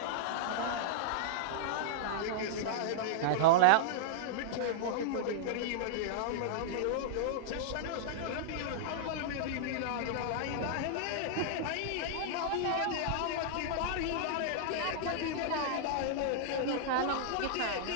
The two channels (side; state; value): both; different; correlation -0.01